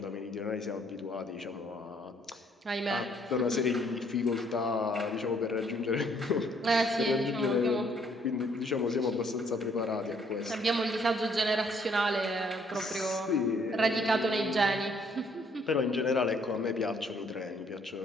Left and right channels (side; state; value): both; normal; correlation 0.66